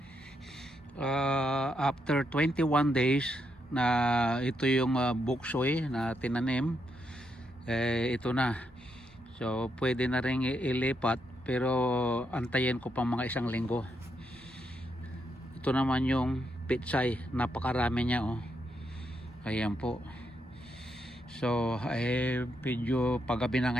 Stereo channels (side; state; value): both; normal; correlation 0.80